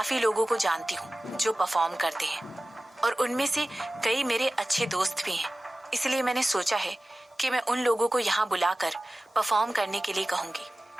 लोगों को जानती हूँ जो परफॉर्म करते हैं और उनमें से कई मेरे अच्छे दोस्त भी हैं। इसलिए मैंने सोचा है कि मैं उन लोगों को यहाँ बुलाकर परफॉर्म करने के लिए कहूँगी।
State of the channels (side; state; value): both; normal; correlation 0.96